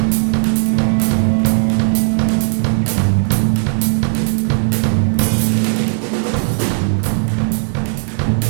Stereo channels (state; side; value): silent; left; 69 dB below the other